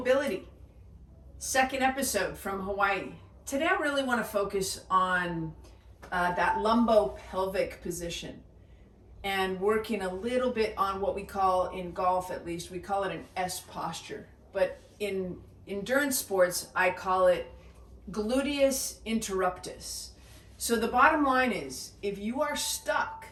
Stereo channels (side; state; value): both; identical; correlation 1.00